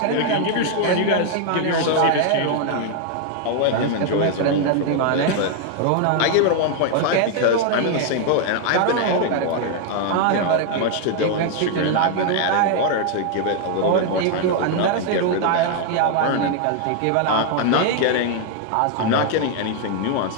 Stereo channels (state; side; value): different; both; correlation 0.00